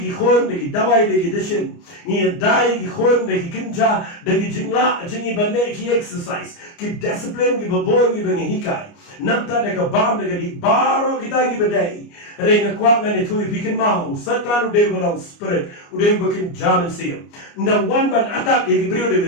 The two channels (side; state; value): right; late; 29 ms